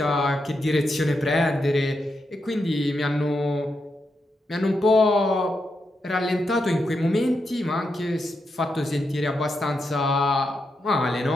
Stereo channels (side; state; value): both; normal; correlation 0.84